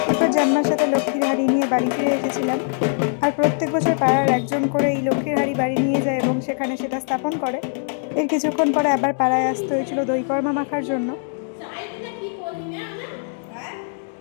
এরপর জন্মার সাথে লক্ষ্মীর হাড়ি নিয়ে বাড়ি ফিরে এসেছিলাম। আর প্রত্যেক বছর পাড়ার একজন করে এই লক্ষ্মীর হাড়ি বাড়ি নিয়ে যায় এবং সেখানে সেটা স্থাপন করে। এর কিছুক্ষণ পরে আবার পাড়ায় আসতে হয়েছিল দই কর্মা মাখার জন্য।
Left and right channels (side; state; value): right; silent; 64 dB below the other